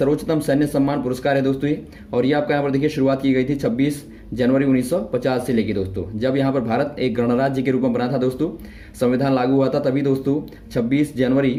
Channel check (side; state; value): both; identical; correlation 1.00